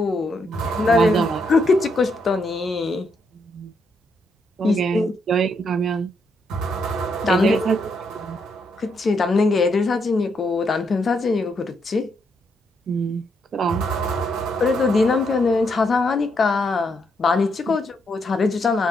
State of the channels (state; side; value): normal; both; correlation 0.77